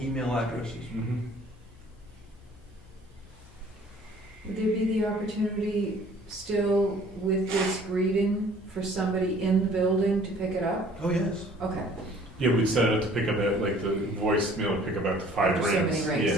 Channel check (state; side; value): normal; both; correlation 0.54